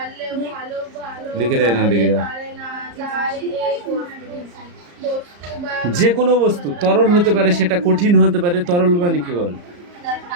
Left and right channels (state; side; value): late; left; 34 ms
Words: লিখে দেয় না, দেখে যা। যে কোনো বস্তু তরল হতে পারে, সেটা কঠিন হতে পারে। তরল মানে কি বল?